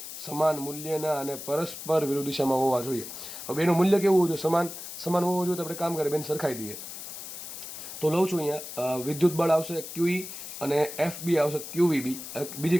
સમાન મૂલ્યના અને પરસ્પર વિરુદ્ધ દિશામાં હોવા જોઈએ. હવે એનું મૂલ્ય કેવું હોવું જોઈએ? સમાન હોવું જોઈએ. તો આપણે કામ કરીએ, બેન સરખાઈ દઈએ. તો લઉં છું અહીંયા વિદ્યુત બળ આવશે ક્યુઈ અને એફ બી આવશે ક્યુવીબી. બીજી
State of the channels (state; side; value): noise; left; hiss, 10 dB below the sound